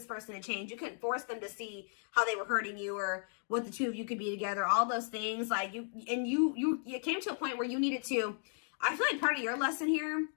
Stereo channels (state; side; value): silent; right; 54 dB below the other